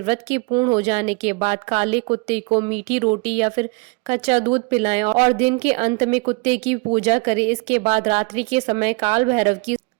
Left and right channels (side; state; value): left; quieter; 31.0 dB